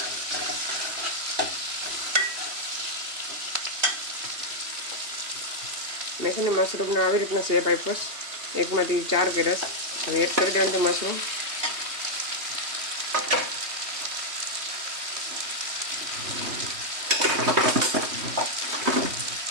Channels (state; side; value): late; left; 3.2 ms